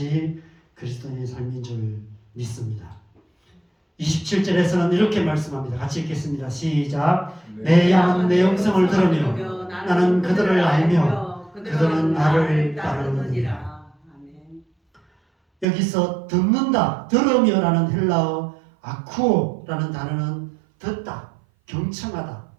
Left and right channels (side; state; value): left; drops out; at 15.7 s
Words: 그리스도인의 삶인 줄 믿습니다. 27절에서는 이렇게 말씀합니다. 같이 읽겠습니다. 시작. 내 양은 내 음성을 들으며 나는 그들을 알며 그들은 나를 따르느니라. 여기서 듣는다, 들으며라는 헬라어 아쿠오라는 단어는 듣다, 경청하다,